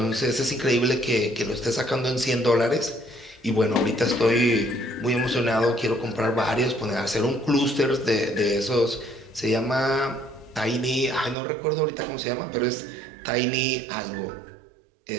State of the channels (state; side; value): drops out; left; at 11.4 s